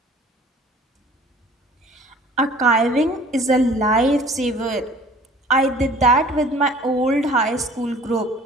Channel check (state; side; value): normal; both; correlation 0.49